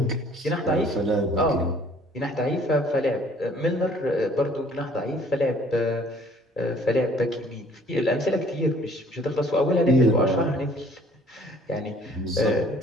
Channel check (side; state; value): both; normal; correlation 0.56